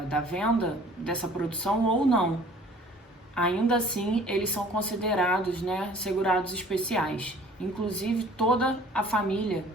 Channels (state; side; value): normal; both; correlation 0.51